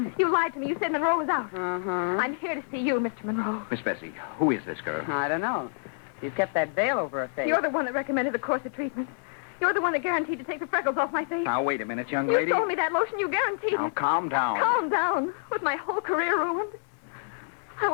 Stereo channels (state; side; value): silent; right; digital silence